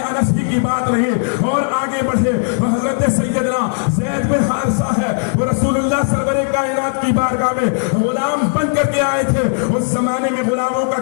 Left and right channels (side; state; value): right; silent; 68 dB below the other